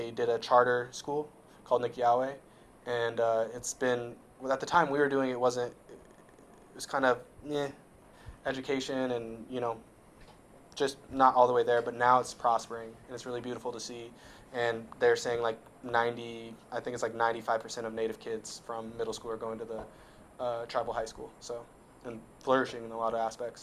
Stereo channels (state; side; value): identical; both; correlation 1.00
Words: did a charter school called Nikiawe, and it's been well, at the time we were doing it wasn't it was kind of education and just not all the way there, but now it's prospering and it's really beautiful to see. And they're saying like 90, I think it's like 95% of Native kids from middle school are going to the tribal high school. So and flourishing in a lot of